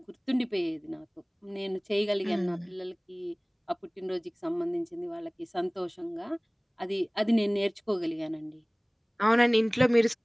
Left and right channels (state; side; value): identical; both; correlation 1.00